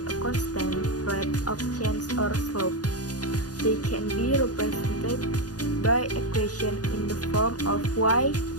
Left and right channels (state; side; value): late; right; 0.68 ms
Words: constant rate of change or slope. They can be represented by equation in the form of y